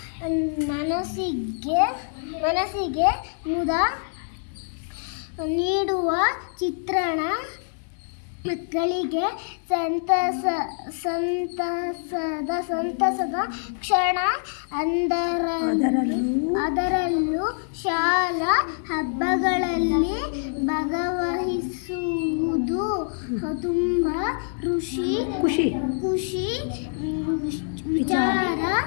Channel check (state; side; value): silent; right; digital silence